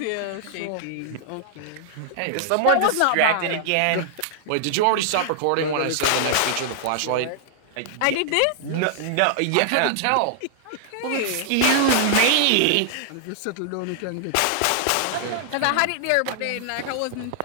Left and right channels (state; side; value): different; both; correlation -0.01